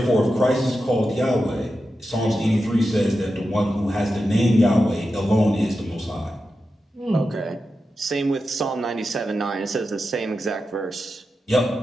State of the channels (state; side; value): normal; both; correlation 0.90